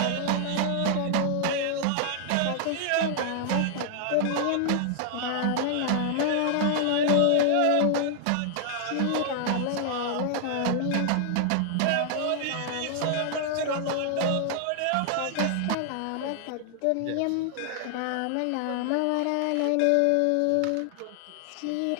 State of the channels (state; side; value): different; both; correlation 0.00